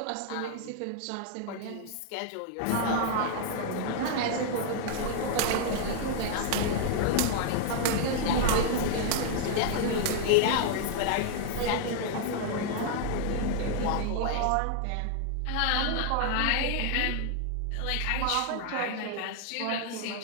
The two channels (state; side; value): different; both; correlation 0.00